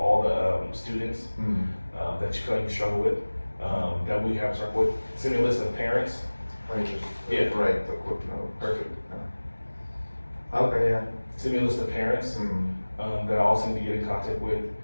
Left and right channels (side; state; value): both; inverted; correlation -1.00